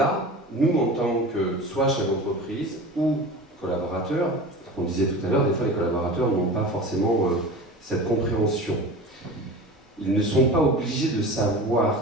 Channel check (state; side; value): normal; both; correlation 0.34